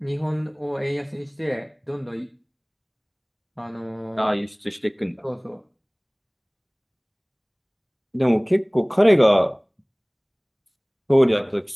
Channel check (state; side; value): identical; both; correlation 1.00